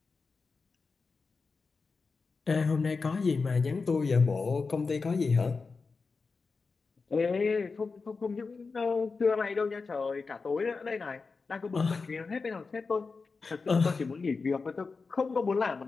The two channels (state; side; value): quieter; right; 4.4 dB